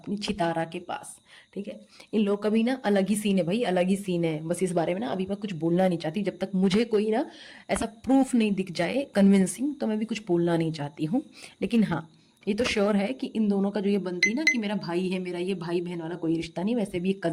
छितारा के पास, ठीक है। इन लोग का भी ना अलग ही सीन है भाई, अलग ही सीन है। बस इस बारे में ना अभी मैं कुछ बोलना नहीं चाहती, जब तक मुझे कोई ना ऐसा प्रूफ नहीं दिख जाए कन्विंसिंग, तो मैं भी कुछ बोलना नहीं चाहती हूँ। लेकिन हाँ, ये तो श्योर है कि इन दोनों का जो ये बनती ना कि मेरा भाई है, मेरा ये भाई बहन वाला कोई रिश्ता नहीं, वैसे भी एक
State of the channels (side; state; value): both; identical; correlation 1.00